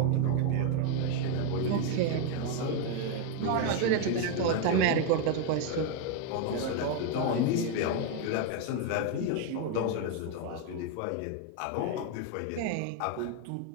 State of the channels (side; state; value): both; different; correlation 0.01